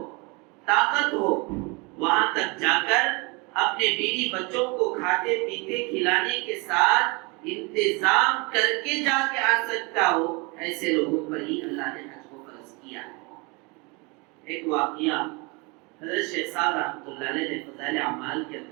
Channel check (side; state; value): left; quieter; 28.6 dB